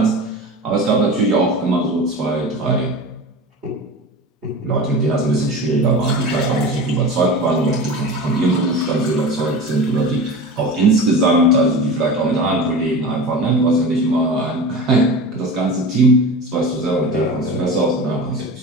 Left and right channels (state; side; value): normal; both; correlation 0.31